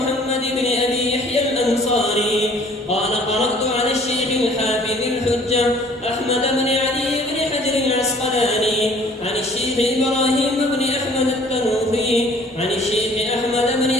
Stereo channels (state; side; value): normal; both; correlation 0.54